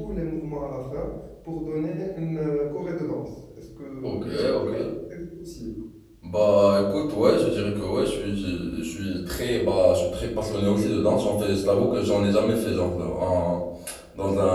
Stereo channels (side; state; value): both; identical; correlation 1.00